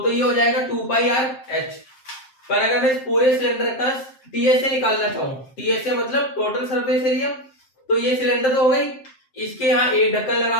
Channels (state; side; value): late; right; 7.6 ms